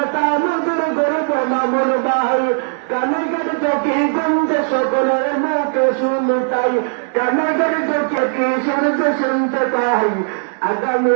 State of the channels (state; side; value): silent; left; 62 dB below the other